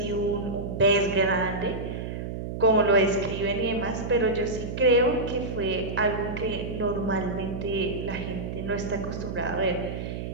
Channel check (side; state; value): right; noise; hum, 6 dB below the sound